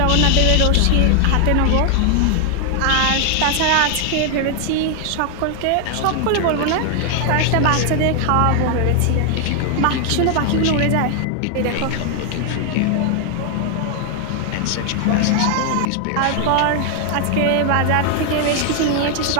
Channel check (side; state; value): both; different; correlation 0.00